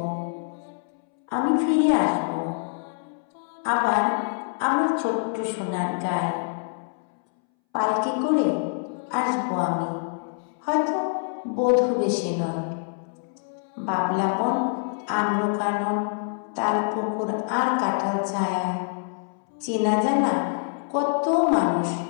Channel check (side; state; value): right; silent; 61 dB below the other